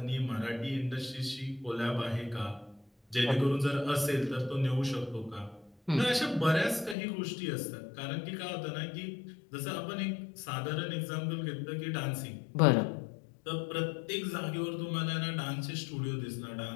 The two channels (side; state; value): right; drops out; at 7.0 s